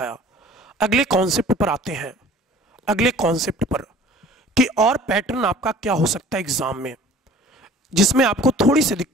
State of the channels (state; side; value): normal; both; correlation 0.48